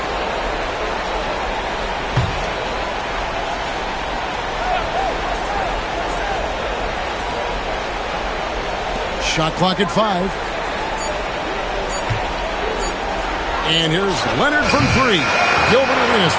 Shot clock at 5. And here's Leonard from 3. Gilbert Arenas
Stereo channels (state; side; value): identical; both; correlation 1.00